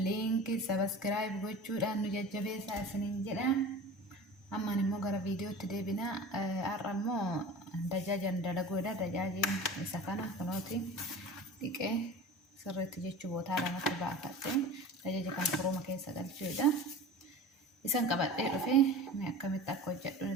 لينك سبسكرايب وجود أنو ججبه ساسنين جدا أما نمو غرا فيديو تدي بنا أرمو دجاجا دلقودا دجاجين سكنا كنوتي ديكي سرت جيتشو بوتالا نتبع فتين دجاجا كان فروما كيسا قلتشودا isan qabadhee dhufe mee akkamitti akka hojjedhu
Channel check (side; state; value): both; normal; correlation 0.36